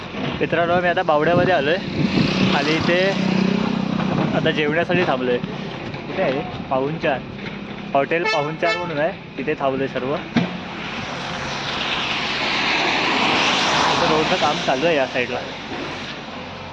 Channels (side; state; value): both; identical; correlation 1.00